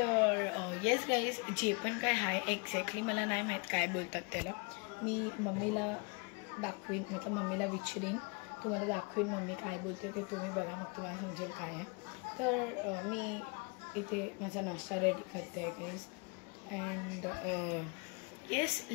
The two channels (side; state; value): right; quieter; 32.4 dB